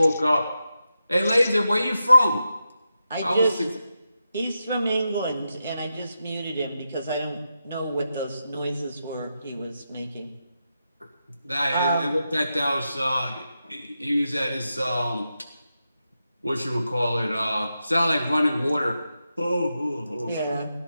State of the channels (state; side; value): inverted; both; correlation -0.88